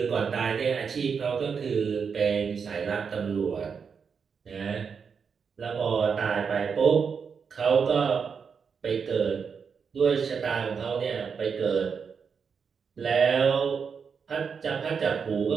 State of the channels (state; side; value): quieter; left; 6.1 dB